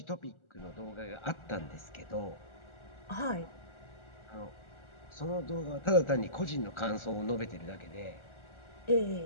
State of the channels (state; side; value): late; right; 1.4 ms